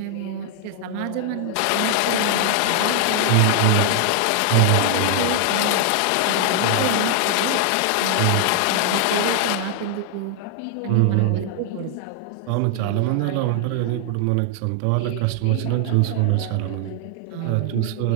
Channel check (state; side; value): different; both; correlation 0.00